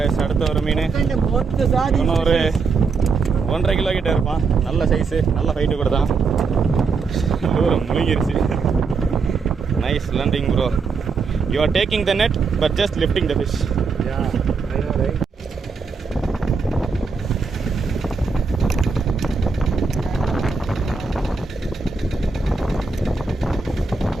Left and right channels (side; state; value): left; quieter; 4.8 dB